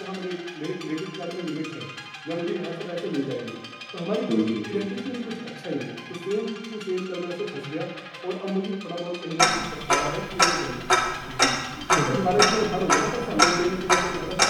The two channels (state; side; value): identical; both; correlation 1.00